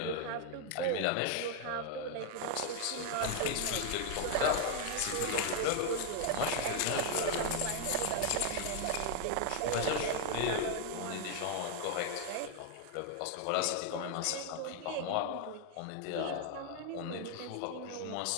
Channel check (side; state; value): both; different; correlation 0.00